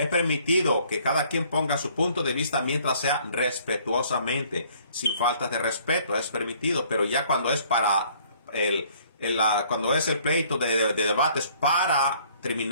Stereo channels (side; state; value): both; inverted; correlation -0.59